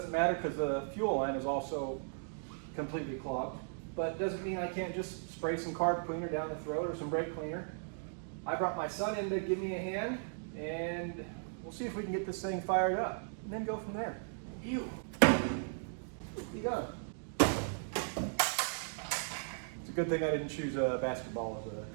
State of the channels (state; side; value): silent; left; digital silence